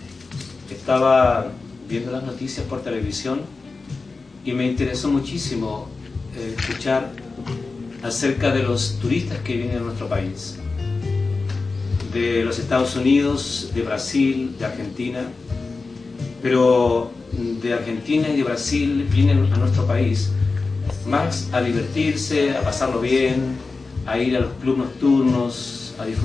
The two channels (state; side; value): quieter; right; 4.0 dB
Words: estaba viendo las noticias por televisión y me interesó muchísimo escuchar acerca de los turistas que vienen a nuestro país, de los Estados Unidos, de Brasil, de Argentina, pero de Argentina y de Brasil vienen a nuestro país más a divertirse, a pasarlo bien, a ir a los clubes nocturnos, a